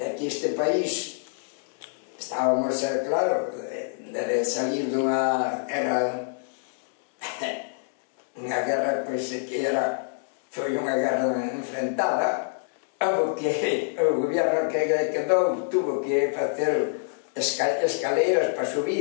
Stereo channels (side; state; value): right; silent; digital silence